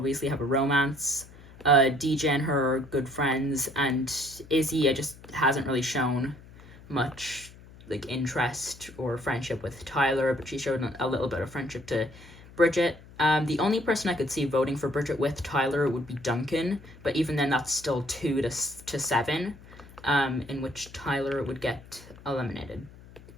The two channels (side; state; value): left; noise; hum, 20 dB below the sound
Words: have a romance. DJ and her are good friends, and Izzy just hasn't really shown much like interest or friendship with Tyler, but she showed a little bit of friendship to Bridget. The only person I could see voting for Bridget with Tyler would be Duncan, but even then that's still 2 to 7. In which Tyler would get eliminated.